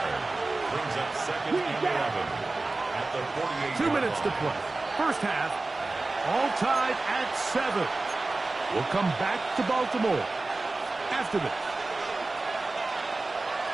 Brings up 2nd and 11 at the 48. 2 minutes to play. 1st half, all tied at 7. We'll come back to Baltimore after this.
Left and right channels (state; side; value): quieter; left; 3.3 dB